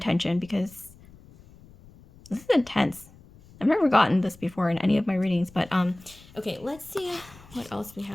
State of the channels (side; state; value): left; noise; rumble, 23 dB below the sound